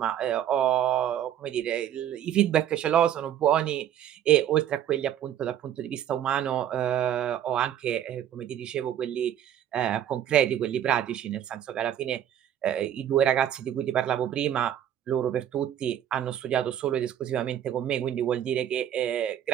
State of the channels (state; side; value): quieter; left; 10.5 dB